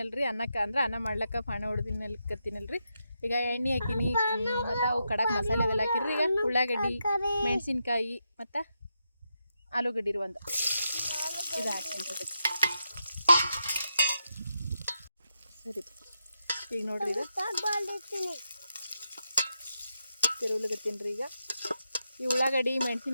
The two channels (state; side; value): inverted; both; correlation -0.84